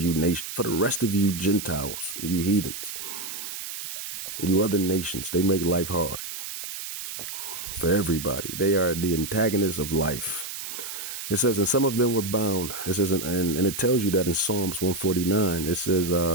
for the rest of you Gentiles, you heathens, you other nations. They make life hard for everybody. They are the antagonists of life. It says, and some of them were bound. It says, and it tells you that in Psalms 149, it says,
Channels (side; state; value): right; noise; hiss, 8 dB below the sound